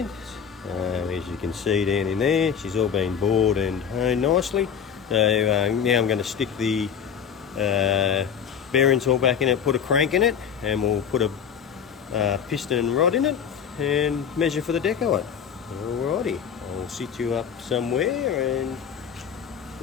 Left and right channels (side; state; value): right; quieter; 7.6 dB